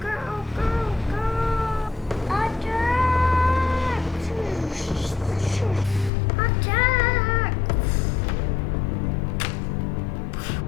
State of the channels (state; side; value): drops out; right; at 6.1 s